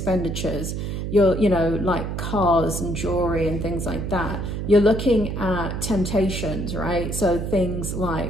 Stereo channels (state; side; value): noise; right; hum, 4 dB below the sound